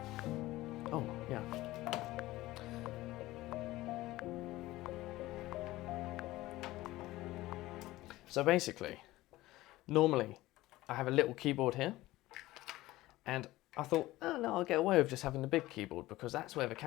Oh, yeah. So basically, normally I have a little keyboard here, and I thought, oh no, I'll get away with just having the big keyboard because that's where the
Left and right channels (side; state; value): right; quieter; 17.6 dB